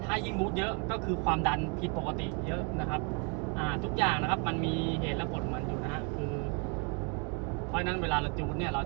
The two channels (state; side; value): quieter; left; 36.0 dB